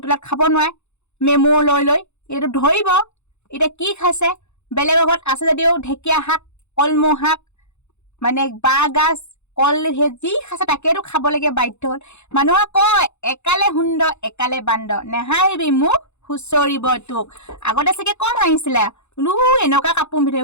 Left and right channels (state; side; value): late; right; 0.82 ms